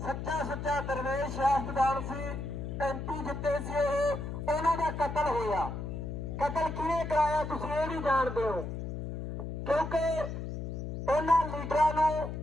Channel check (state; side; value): noise; left; hum, 5 dB below the sound